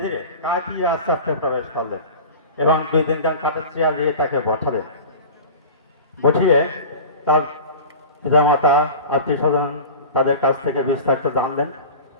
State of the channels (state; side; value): inverted; both; correlation -0.35